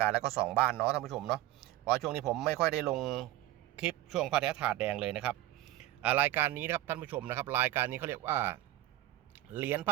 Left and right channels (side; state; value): left; quieter; 15.6 dB